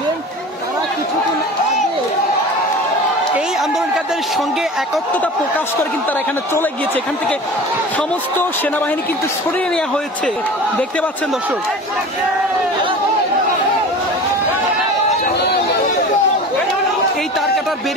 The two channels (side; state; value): both; normal; correlation 0.36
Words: তারা কিছুদিন আগে এই আন্দোলনকারীদের সঙ্গে একত্রতা প্রকাশ করে কিন্তু তারা এখানে চলে গিয়েছে। এখান থেকে সমস্ত সেনাবাহিনী কিন্তু সরিয়ে নেওয়া হয়েছে। দেখতে পাচ্ছেন দর্শক, এই তার কাটার